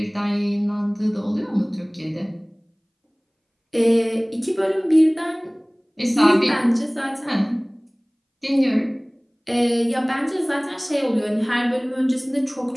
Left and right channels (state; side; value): identical; both; correlation 1.00